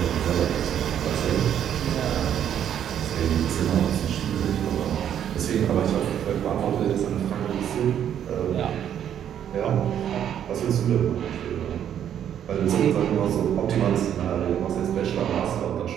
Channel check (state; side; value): quieter; left; 9.7 dB